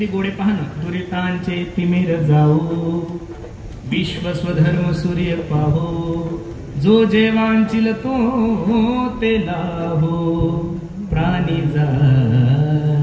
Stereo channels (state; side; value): identical; both; correlation 1.00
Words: गोडे पहा ना. दुरितांचे तिमिर जाऊ विश्व स्वधर्म सूर्य पाहो, जो जेवांचिल तो ते लाहो प्राणी जात.